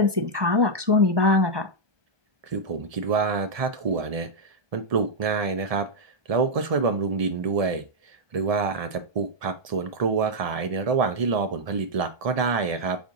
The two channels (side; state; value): left; late; 1.7 ms